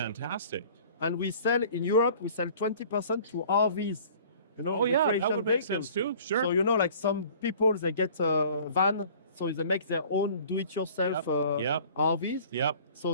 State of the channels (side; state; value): both; inverted; correlation -0.49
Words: And we sell in Europe, we sell 20% to RVs. Oh yeah, that recreation would make vehicles. sense too. Sure. So like some people, they get a van, so they make their own do-it-yourself Yep. RVs. Yep.